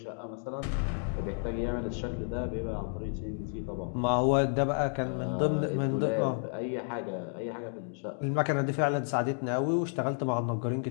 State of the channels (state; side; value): silent; right; 57 dB below the other